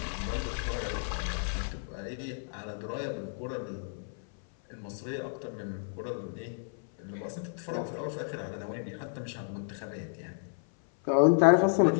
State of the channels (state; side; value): silent; right; 57 dB below the other